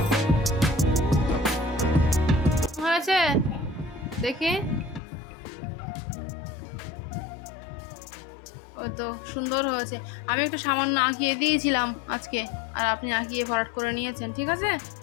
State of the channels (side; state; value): right; drops out; at 5.0 s